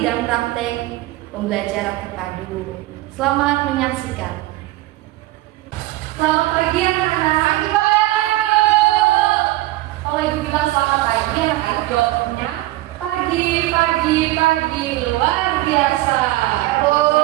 praktek pembelajaran terpadu. Selamat menyaksikan. Selamat pagi anak-anak. Kalau ibu bilang selamat pagi, anak-anak jawabnya pagi luar biasa.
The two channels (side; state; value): left; quieter; 17.9 dB